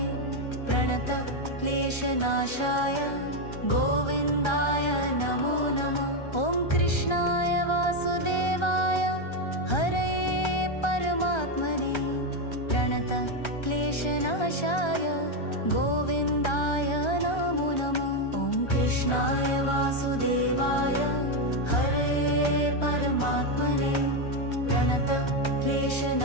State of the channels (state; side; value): late; right; 1.3 ms